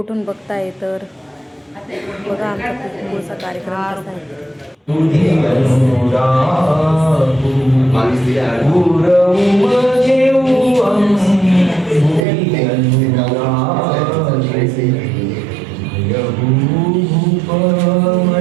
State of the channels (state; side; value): drops out; left; at 12.2 s